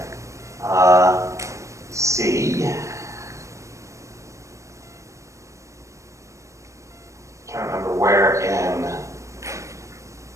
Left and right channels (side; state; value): left; late; 0.15 ms